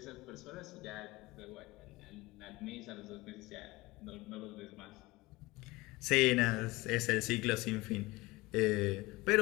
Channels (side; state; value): right; quieter; 21.1 dB